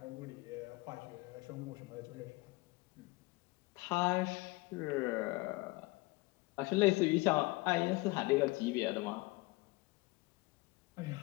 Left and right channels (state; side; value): quieter; right; 23.2 dB